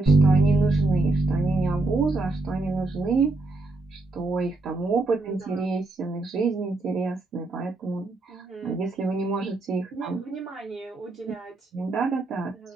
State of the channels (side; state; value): left; quieter; 3.1 dB